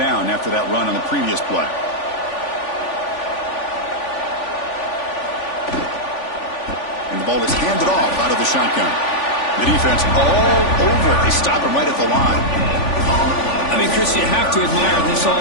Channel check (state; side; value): late; right; 3.5 ms